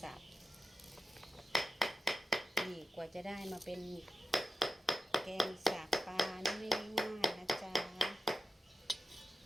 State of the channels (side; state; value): both; normal; correlation 0.91